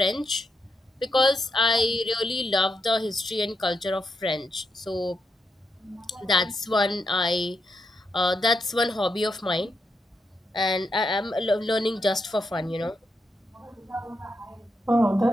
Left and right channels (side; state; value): both; normal; correlation 0.82